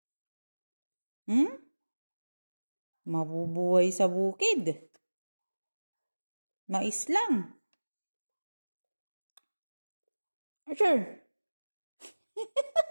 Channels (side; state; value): both; inverted; correlation -1.00